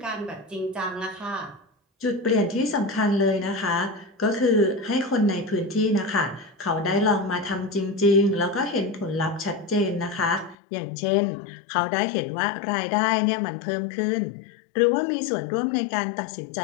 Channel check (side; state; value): right; drops out; at 10.6 s